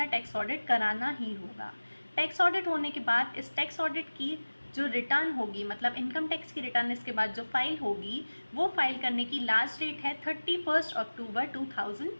टैक्स ऑडिट कराना ही होगा। टैक्स ऑडिट होने के बाद इस टैक्स ऑडिट की जो रिटर्न होगी, मतलब इनकम टैक्स की रिटर्न इसके बाद जो फाइल होगी, वो फाइल करने की लास्ट डेट है 31 अक्टूबर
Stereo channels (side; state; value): both; inverted; correlation -1.00